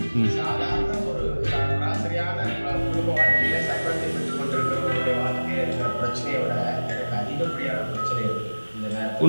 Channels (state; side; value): inverted; both; correlation -1.00